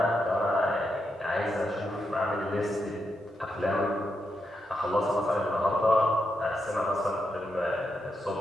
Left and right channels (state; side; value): normal; both; correlation 0.83